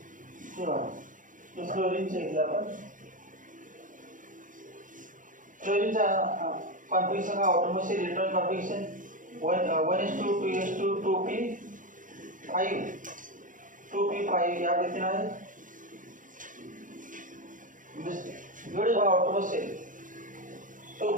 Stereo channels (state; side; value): late; left; 0.38 ms